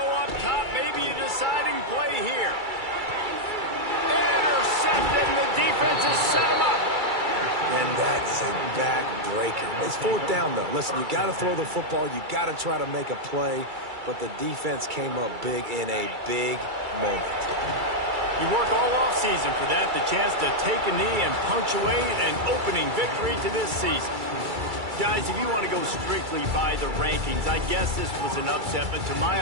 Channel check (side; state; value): left; late; 2.3 ms